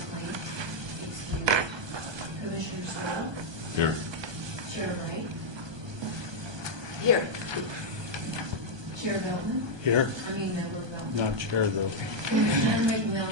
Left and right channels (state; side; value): late; left; 1.2 ms